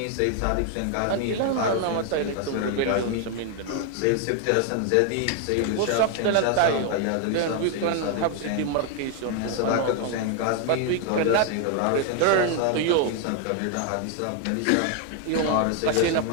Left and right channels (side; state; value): both; different; correlation 0.00